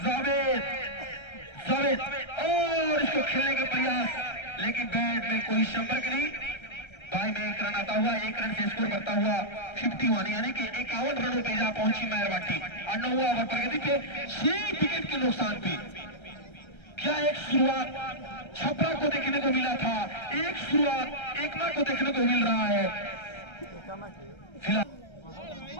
जावेद और इसको खेलने का प्रयास, लेकिन बैट में कोई संपर्क नहीं। बाई में 1 रन आता हुआ 1 रन से स्कोर करता हुआ 51 यानी कि 51 रनों पे जा पहुंची मेहरवा टीम। और 9वां ओवर प्रगति पे 6 विकेट के नुकसान पे। क्या एक शुरुआत छपरा को देखने को मिला था, एक शुरुआत एकमा को देखने को मिल रहा है। फिलहाल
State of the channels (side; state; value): right; late; 1.3 ms